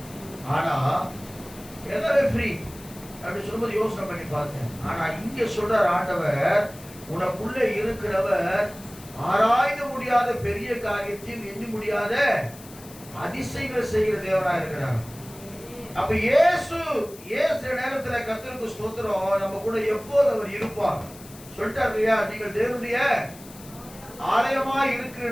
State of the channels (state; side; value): noise; left; hiss, 19 dB below the sound